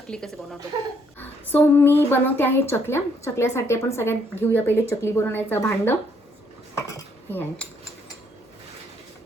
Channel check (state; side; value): normal; both; correlation 0.69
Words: कसे बनवतो. सो मी बनवते आहे चकल्या. चकल्यासाठी आपण सगळ्यात घेऊया पहिले चकली बनवण्याचं भांड. हे आहे.